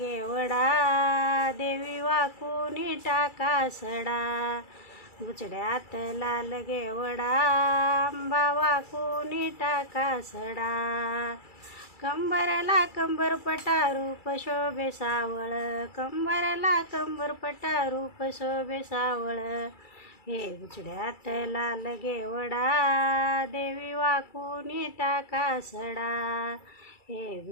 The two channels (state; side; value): late; right; 2.3 ms